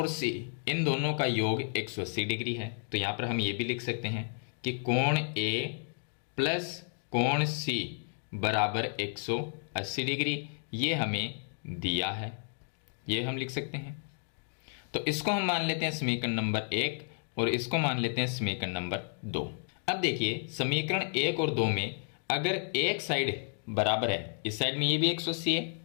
सी, इन दोनों का योग 180 डिग्री है। तो यहाँ पर हम ये भी लिख सकते हैं कि कोण ए प्लस कोण सी बराबर 180 डिग्री, ये हमें दिया है, ये हम लिख सकते हैं। तो इसको हम मान लेते हैं समीकरण नंबर 1 और इसको मान लेते हैं समीकरण नंबर 2। अब देखिए समीकरण 1 और 2 में अगर एक साइड बराबर है, इस साइड में ये भी 180 है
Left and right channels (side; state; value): right; silent; digital silence